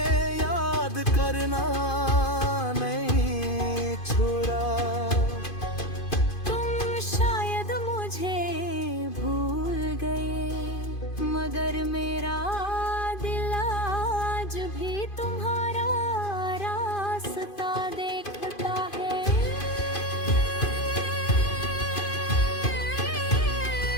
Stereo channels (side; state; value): right; late; 2.5 ms